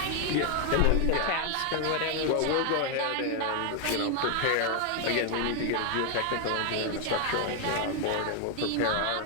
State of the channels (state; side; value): different; both; correlation 0.00